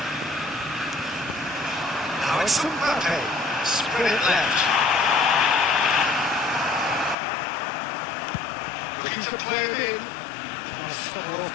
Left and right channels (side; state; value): right; drops out; at 7.2 s